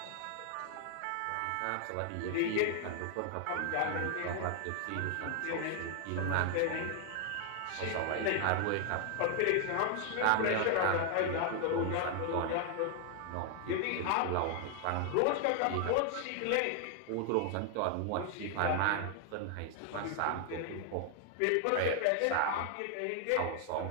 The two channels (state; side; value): different; both; correlation 0.00